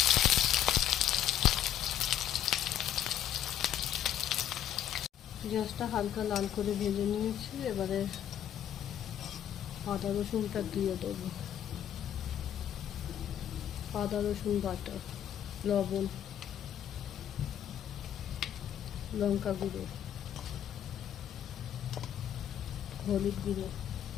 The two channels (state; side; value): quieter; right; 10.6 dB